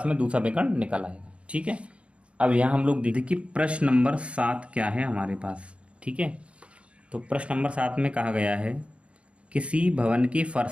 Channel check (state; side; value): late; left; 0.060 ms